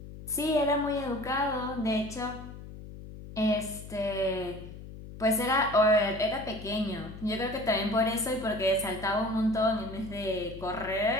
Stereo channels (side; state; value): left; noise; hum, 13 dB below the sound